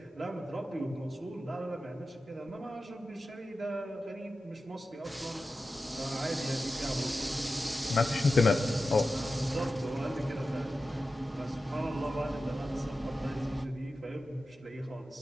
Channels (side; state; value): both; normal; correlation 0.93